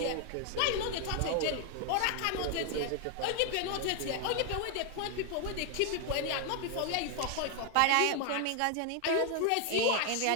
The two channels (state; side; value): different; both; correlation 0.00